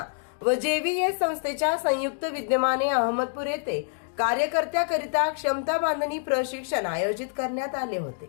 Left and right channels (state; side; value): silent; right; digital silence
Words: व जेव्हीएस संस्थेच्या संयुक्त विद्यमाने अहमदपूर येथे कार्यकर्त्याकरिता क्षमता बांधणी प्रशिक्षण आयोजित करण्यात आले